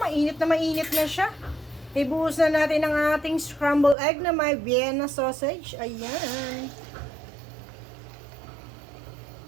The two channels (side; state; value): left; drops out; at 4.0 s